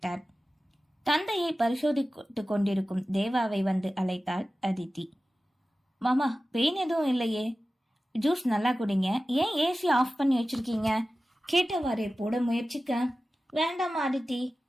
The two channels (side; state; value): both; normal; correlation 0.95